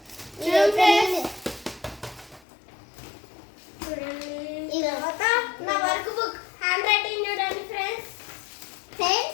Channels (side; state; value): right; drops out; at 2.4 s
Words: తర్వాత నా వర్క్ బుక్ హ్యాండ్ రైటింగ్ చూడండి ఫ్రెండ్స్.